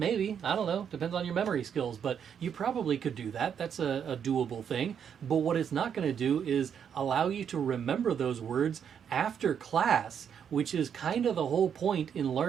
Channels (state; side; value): quieter; left; 8.0 dB